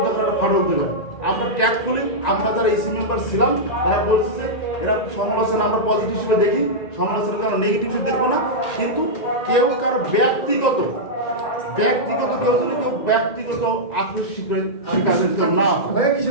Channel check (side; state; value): right; late; 1.9 ms